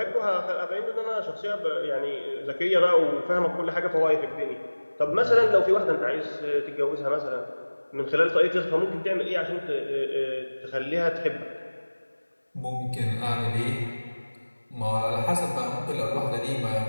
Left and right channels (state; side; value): inverted; both; correlation -1.00